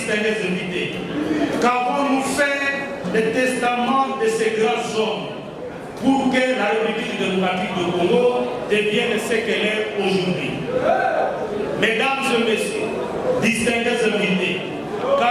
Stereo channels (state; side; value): identical; both; correlation 1.00